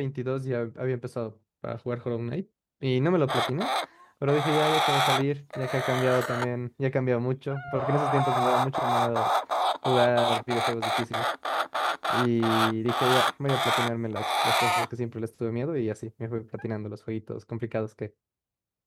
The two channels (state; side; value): identical; both; correlation 1.00